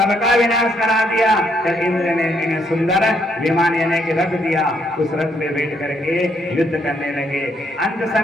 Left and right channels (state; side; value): normal; both; correlation 0.72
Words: विनाश करा दिया। जब इंद्र ने इन्हें सुंदर विमान यानी कि रथ दिया, उस रथ पे बैठ करके युद्ध करने लगे। अंत